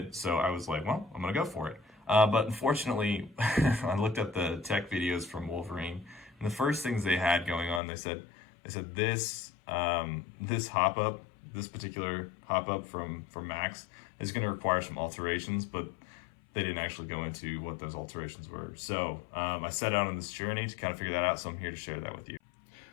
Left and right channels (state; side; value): drops out; right; at 7.8 s